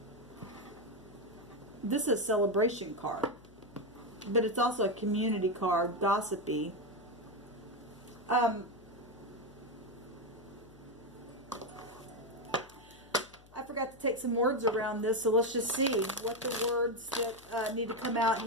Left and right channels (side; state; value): left; noise; hum, 24 dB below the sound